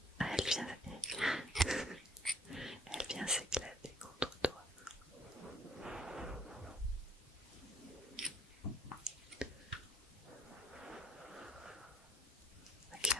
Ah, elle vient s'éclater contre toi.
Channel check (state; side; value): normal; both; correlation 0.56